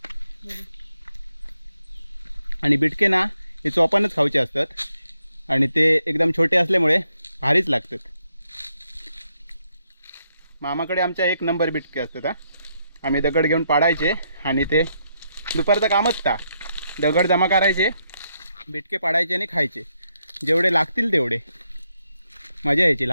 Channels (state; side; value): inverted; both; correlation -0.78